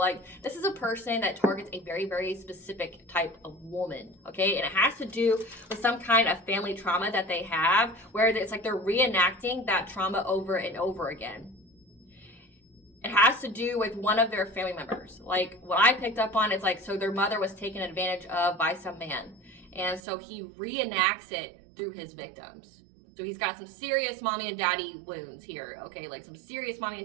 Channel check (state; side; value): drops out; left; at 20.0 s